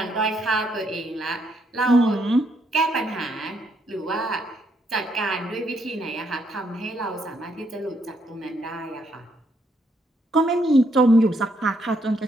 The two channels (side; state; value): both; normal; correlation 0.74